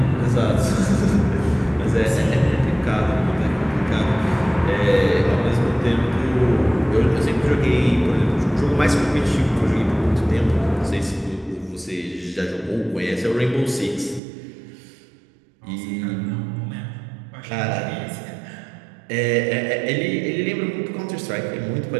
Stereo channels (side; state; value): left; drops out; at 14.2 s